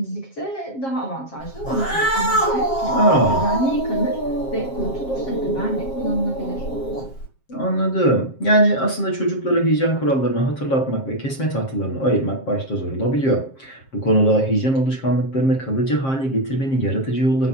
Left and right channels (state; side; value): late; right; 7.5 ms